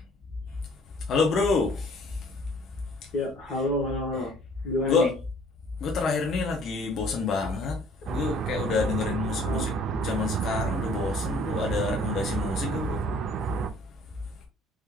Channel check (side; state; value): both; normal; correlation 0.56